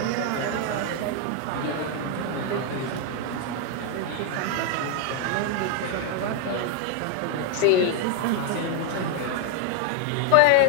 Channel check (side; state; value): both; different; correlation 0.00